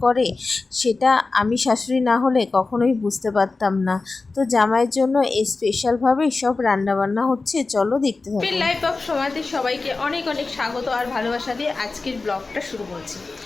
করে সেটা আমি শাশুড়ি না হলে কখনোই বুঝতে পারতাম না। তো জামাইয়ের জন্য এই স্পেশালভাবেই সব রান্নাবান্না হচ্ছে, চলো দেখতে থাকো। লাইফ অফ সমাজে সবাইকে অনেক অনেক স্বাগত আর ভালোবাসা দিয়ে আজকের ব্লগটা শুরু করছি।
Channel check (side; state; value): right; quieter; 3.7 dB